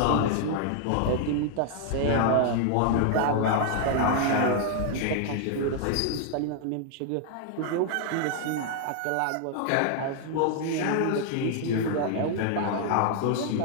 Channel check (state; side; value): different; both; correlation 0.00